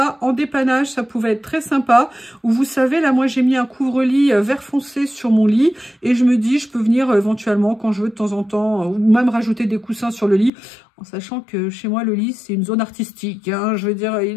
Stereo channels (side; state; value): right; drops out; at 10.5 s